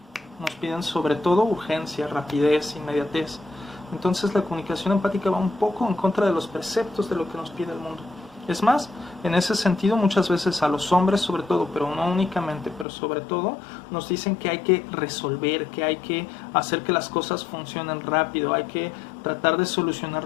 nos piden sobre todo urgencia, rapidez, inmediatez. Entonces la comunicación empática va un poco en contra de los preceptos de lo que nos pide el mundo. Es más, en ese sentido muchas veces a los hombres sobre todo, pero no únicamente, pero sobre todo, nos dicen que hay que resolver, que hay que hacer que las cosas funcionen rápido, hay que tratar de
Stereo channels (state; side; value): drops out; right; at 12.9 s